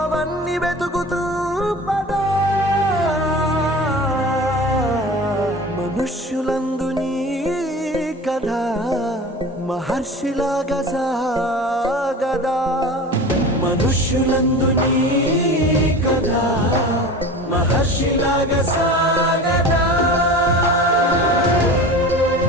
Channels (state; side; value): normal; both; correlation 0.35